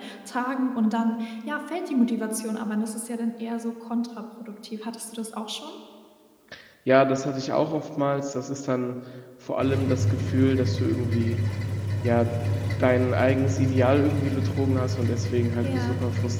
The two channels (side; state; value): both; identical; correlation 1.00